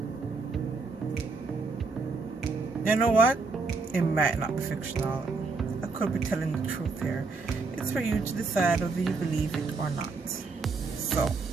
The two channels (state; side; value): quieter; left; 4.2 dB